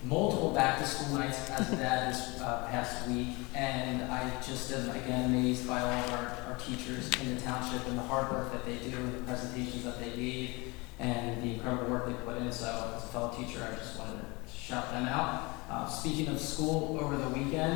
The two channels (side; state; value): right; quieter; 25.6 dB